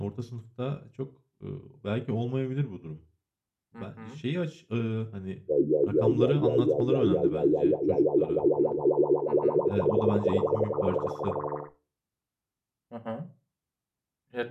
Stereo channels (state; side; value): identical; both; correlation 1.00